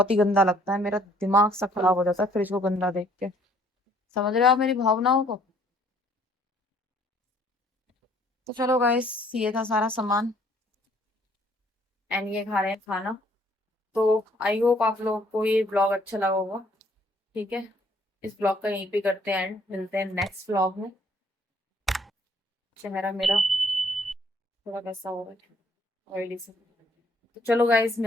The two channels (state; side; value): normal; both; correlation 0.62